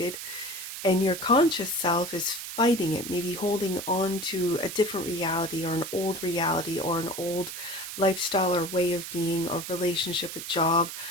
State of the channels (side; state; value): right; noise; hiss, 8 dB below the sound